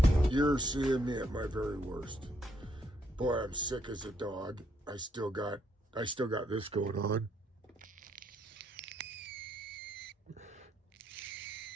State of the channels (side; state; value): both; normal; correlation 0.73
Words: You're seeing me at my very worst. Boy, I'm sick as a dog. I still got this going on.